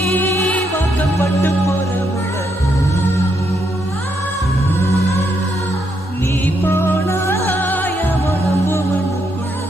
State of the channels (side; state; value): both; normal; correlation 0.78